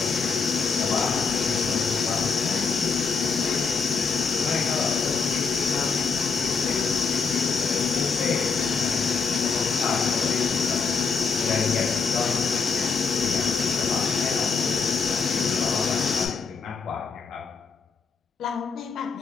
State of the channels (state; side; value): quieter; right; 5.2 dB